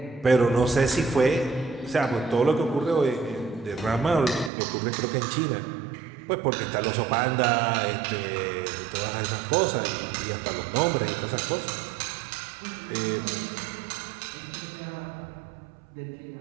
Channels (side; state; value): left; drops out; at 4.5 s